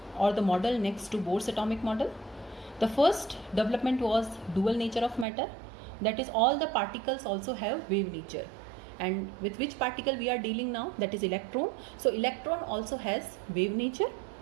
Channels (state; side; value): drops out; left; at 5.2 s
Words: the model next to Bohr's atomic model. The first development was dual nature of matter, that is all the particles also have wave nature. And with which particle we are dealing now? That is electron. So electron also has wave nature.